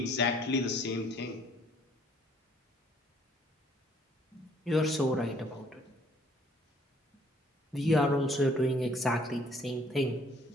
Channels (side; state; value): both; normal; correlation 0.61